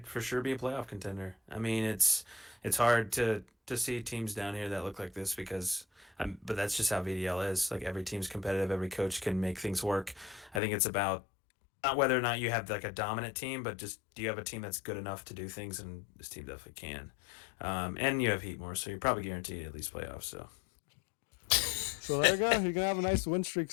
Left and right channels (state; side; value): drops out; right; at 10.6 s